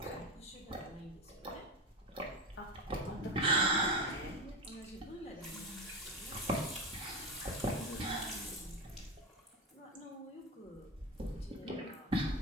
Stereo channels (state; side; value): normal; both; correlation 0.20